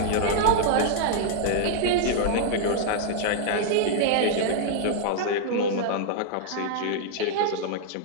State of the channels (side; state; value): both; different; correlation -0.01